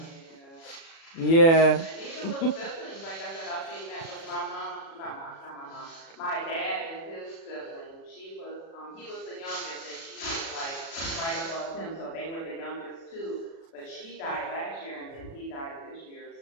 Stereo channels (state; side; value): late; right; 36 ms